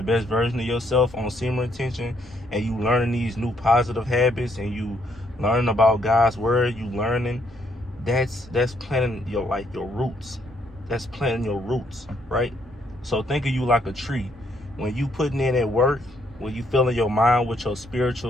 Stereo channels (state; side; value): normal; both; correlation 0.71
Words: best version of yourself on Seamer Intention, and you learning these new positive habits, and you learning about God's word, you learning, that's planting your roots. That's planting your roots, right? So think of you like a tree. When you putting in that work, when you filling your mind with your